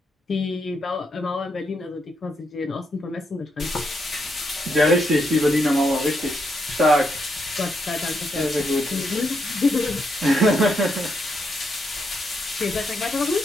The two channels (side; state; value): both; normal; correlation 0.79